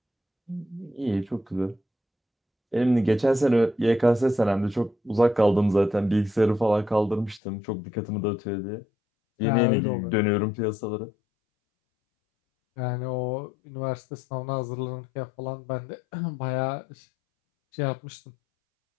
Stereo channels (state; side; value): drops out; right; at 7.4 s